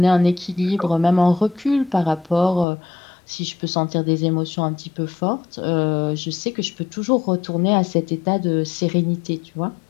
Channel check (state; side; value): drops out; right; at 2.7 s